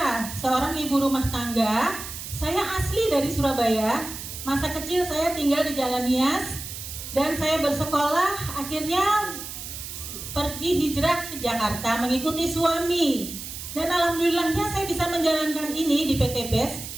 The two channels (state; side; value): noise; right; hiss, 9 dB below the sound